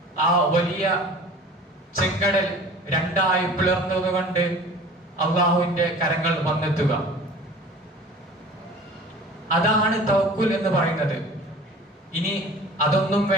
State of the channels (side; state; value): both; normal; correlation 0.43